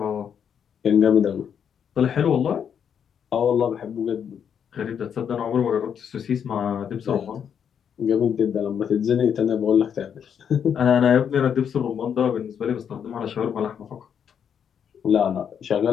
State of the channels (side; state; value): right; quieter; 8.0 dB